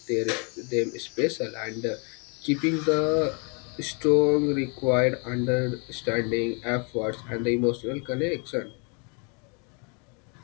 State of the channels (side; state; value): right; quieter; 34.8 dB